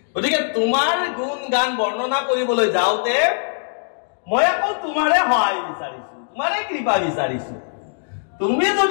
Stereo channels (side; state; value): right; silent; digital silence